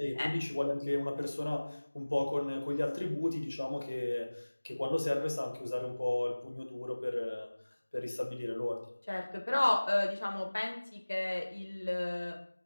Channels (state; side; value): inverted; both; correlation -1.00